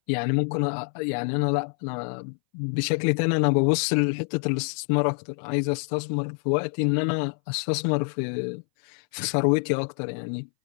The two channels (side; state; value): right; silent; 60 dB below the other